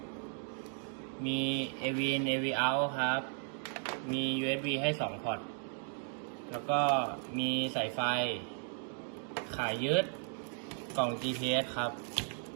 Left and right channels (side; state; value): left; silent; 54 dB below the other